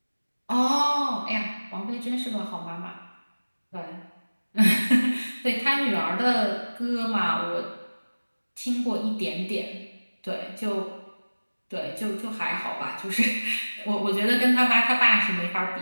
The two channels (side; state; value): both; inverted; correlation -1.00